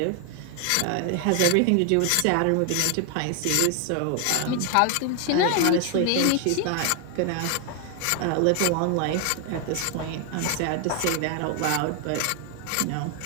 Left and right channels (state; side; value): different; both; correlation 0.00